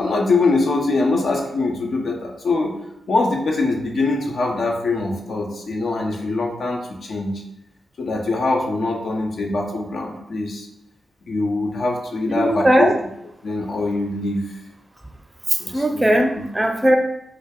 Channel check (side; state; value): both; normal; correlation 0.88